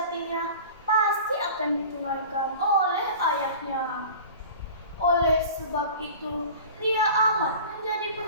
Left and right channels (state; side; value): inverted; both; correlation -0.39